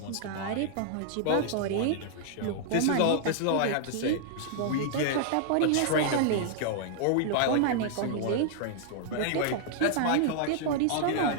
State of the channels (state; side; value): different; both; correlation -0.01